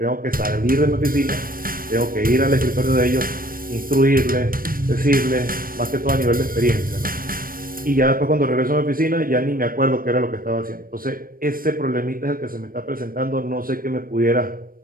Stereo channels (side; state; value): left; late; 0.41 ms